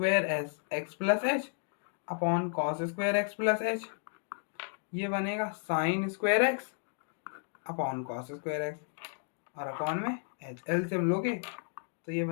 s x plus h upon cos square x plus h, ये बनेगा sine square x upon cos square x और अपॉन में एच। एलसीएम लोगे तो ये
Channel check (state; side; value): silent; right; 56 dB below the other